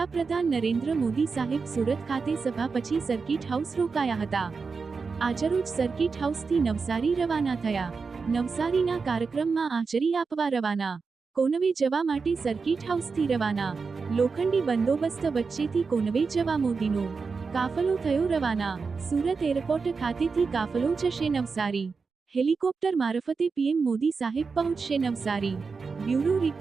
નરેન્દ્ર મોદી સાહેબ સુરત ખાતે સભા પછી સર્કિટ હાઉસ રોકાયા હતા। આજરોજ સર્કિટ હાઉસથી નવસારી રવાના થયા। નવસારીના કાર્યક્રમમાં હાજરી આપવા રવાના। કોનવે જવા માટે સર્કિટ હાઉસથી રવાના। લોખંડી બંદોબસ્ત વચ્ચેથી કોનવે જવા મોદીનો કાફલો થયો રવાના। સુરત એરપોર્ટ ખાતેથી કાફલો જશે નવસારી। હેલિકોપ્ટર મારફતે પીએમ મોદી સાહેબ પહોંચશે નવસારી। Bureau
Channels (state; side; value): quieter; left; 4.9 dB